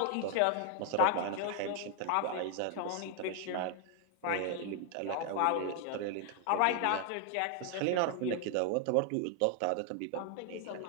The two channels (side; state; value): both; different; correlation 0.00